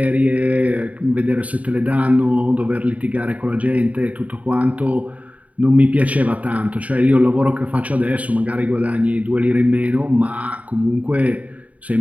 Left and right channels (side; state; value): left; late; 0.069 ms